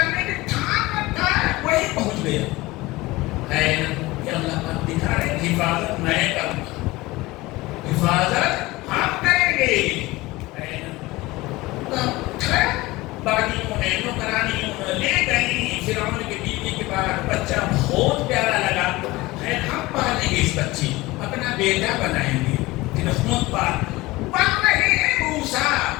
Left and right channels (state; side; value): quieter; right; 20.3 dB